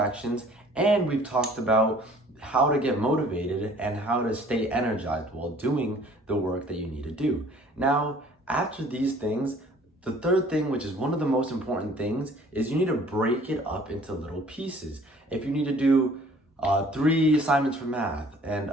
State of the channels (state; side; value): normal; both; correlation 0.53